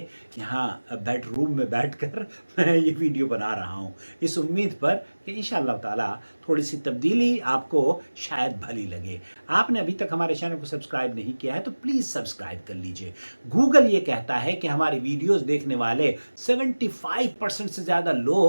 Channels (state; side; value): inverted; both; correlation -1.00